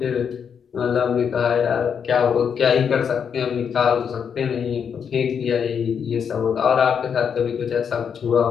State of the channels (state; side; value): quieter; right; 7.2 dB